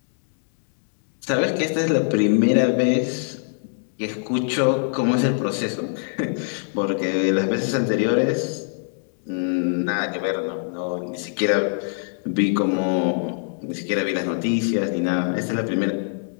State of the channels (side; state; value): right; silent; digital silence